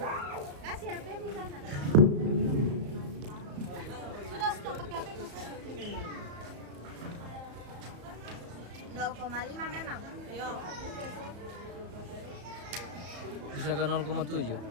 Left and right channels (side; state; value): left; late; 34 ms